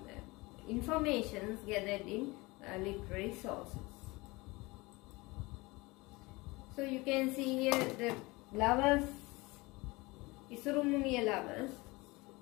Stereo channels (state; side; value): quieter; right; 23.3 dB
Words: informations gathered in literary sources. So you can see here the lovers, Isurumuniya lovers,